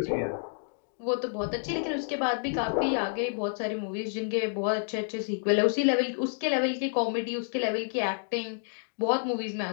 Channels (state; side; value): silent; right; digital silence